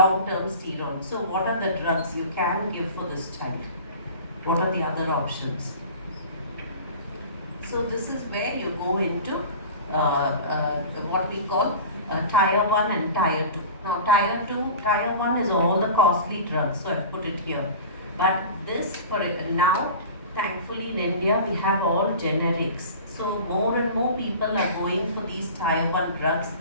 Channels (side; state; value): both; inverted; correlation -0.37